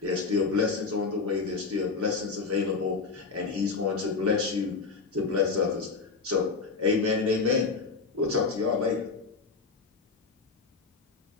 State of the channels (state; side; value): quieter; right; 4.5 dB